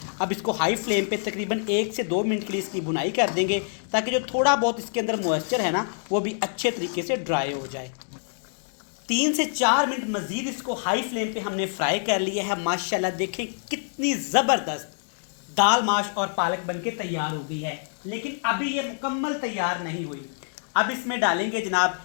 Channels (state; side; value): silent; right; digital silence